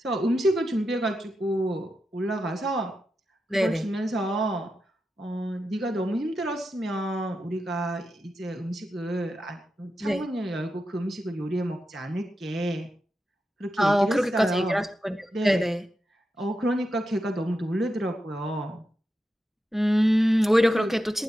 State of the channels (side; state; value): both; normal; correlation 0.88